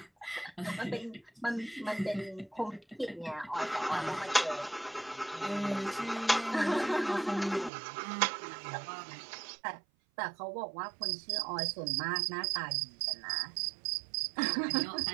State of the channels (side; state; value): left; drops out; at 7.7 s